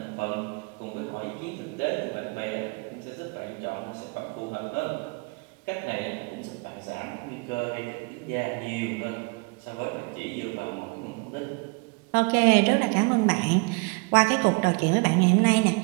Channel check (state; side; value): quieter; left; 30.5 dB